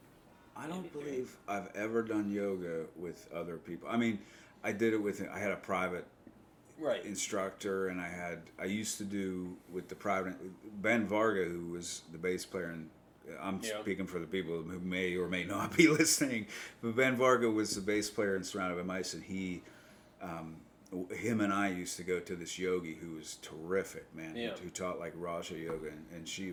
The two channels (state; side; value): identical; both; correlation 1.00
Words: I don't believe I've ever done yoga with other people. I mean, I did it I had a private instructor, and I used to do with the private, Ben Varga, who was the bass player, and I'm speaking for the people who may or may not be listening, but Ben Varga was the bass player in Surrounded by Mice, and him and I used to go to this yogi who was terrific, man, who taught like Raja Yoga, and she